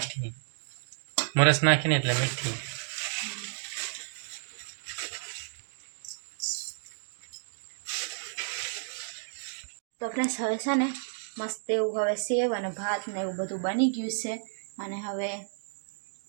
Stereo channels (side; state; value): left; silent; digital silence